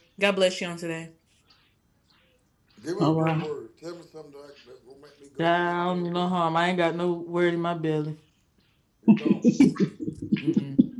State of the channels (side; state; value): both; identical; correlation 1.00